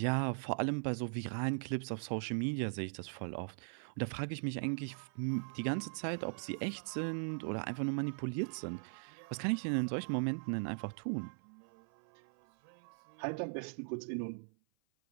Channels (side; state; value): left; silent; 51 dB below the other